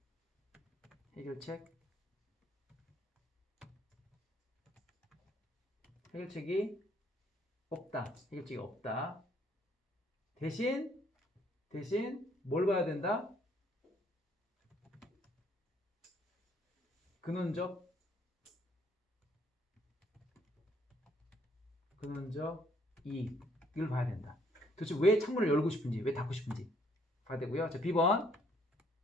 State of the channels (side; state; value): both; normal; correlation 0.65